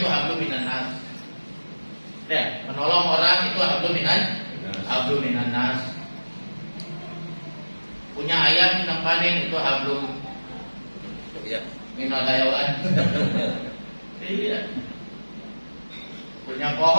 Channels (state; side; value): inverted; both; correlation -1.00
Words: itu hablum minannas. Ya, menolong orang itu hablum minannas. Punya ayam yang panen itu hablum minal hayawan. Iya. Punya